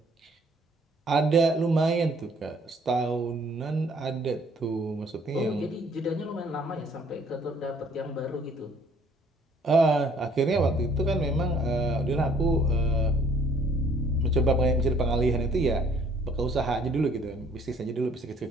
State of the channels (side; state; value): both; normal; correlation 0.60